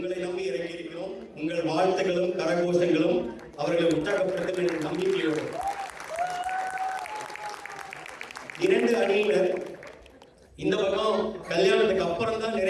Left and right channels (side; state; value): both; identical; correlation 1.00